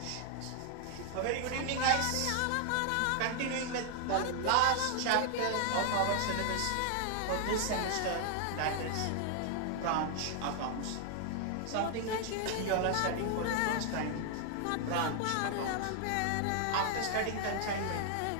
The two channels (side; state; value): both; different; correlation 0.00